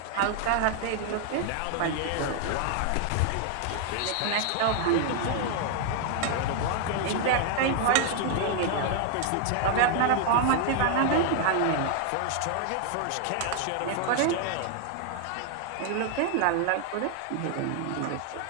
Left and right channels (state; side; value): different; both; correlation 0.00